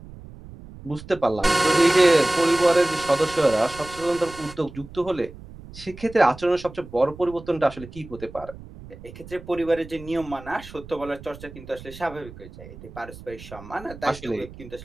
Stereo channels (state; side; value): noise; right; rumble, 17 dB below the sound